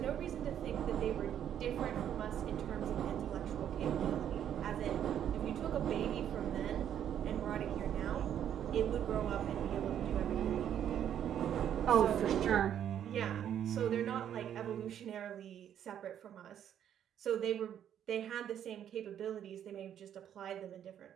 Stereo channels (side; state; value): left; quieter; 9.8 dB